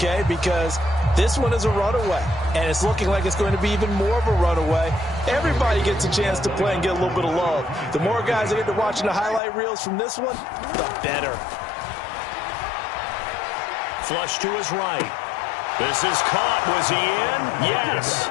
Because this one is a runaway, and it's looking like it's going to be even more of a runaway. Everybody gets a chance to play and get a little bit of love. The more guys that get to watching the highlight reels from this one, the better. Flush to his right. This is caught. Was he in? Yes.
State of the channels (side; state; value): right; drops out; at 9.4 s